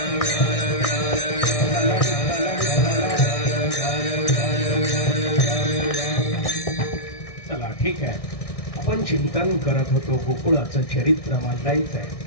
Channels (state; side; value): late; right; 1.6 ms